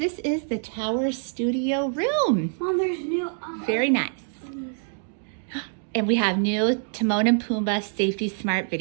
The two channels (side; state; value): left; silent; 61 dB below the other